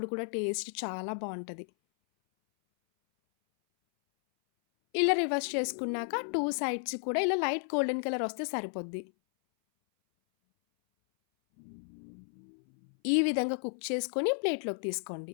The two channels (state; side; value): silent; right; 56 dB below the other